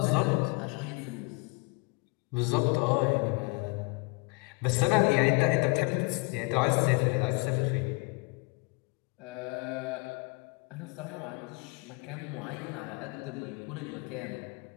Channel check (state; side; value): quieter; right; 29.0 dB